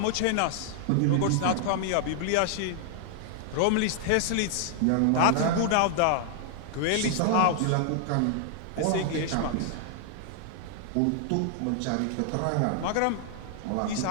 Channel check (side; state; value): both; different; correlation 0.00